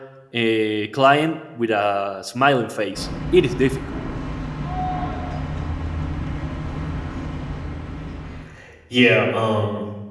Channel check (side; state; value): both; identical; correlation 1.00